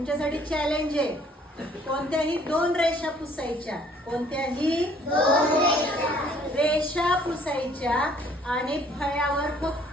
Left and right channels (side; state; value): both; normal; correlation 0.59